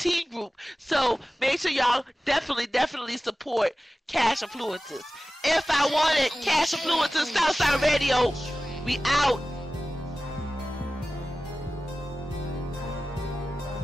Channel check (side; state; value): both; normal; correlation 0.96